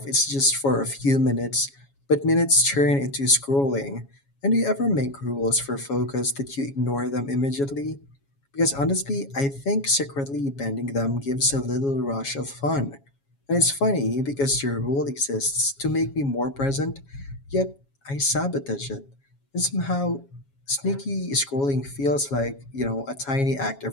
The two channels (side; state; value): right; late; 7.2 ms